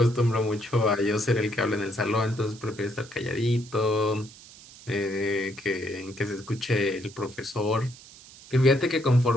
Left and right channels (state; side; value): noise; right; hiss, 20 dB below the sound